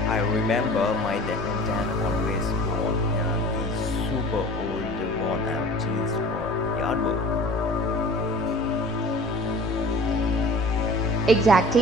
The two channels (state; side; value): noise; left; rumble, 16 dB below the sound